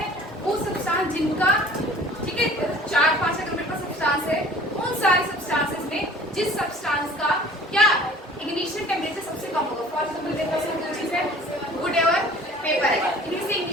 है? वो सब्सटेंस जिनका, ठीक है, 4-5 अगर मेरे पास सब्सटेंस है उन सारे सब्सटेंसेस में जिस सब्सटेंस का क्या इग्निशन टेम्परेचर सबसे कम होगा। फॉर एग्जांपल मेरे पास दो चीज है, वुड और पेपर है। इनमें से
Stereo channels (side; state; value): both; normal; correlation 0.48